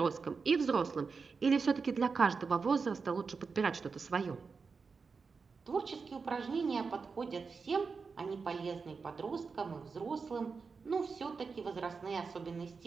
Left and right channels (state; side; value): quieter; left; 4.9 dB